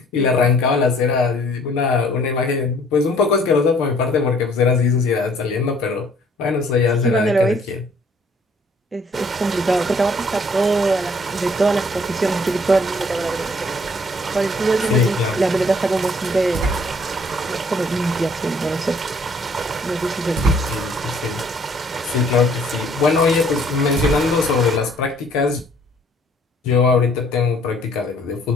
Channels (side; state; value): both; normal; correlation 0.60